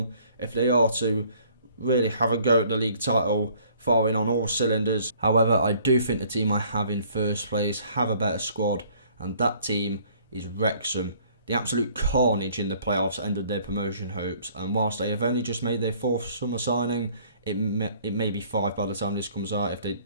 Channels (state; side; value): inverted; both; correlation -0.58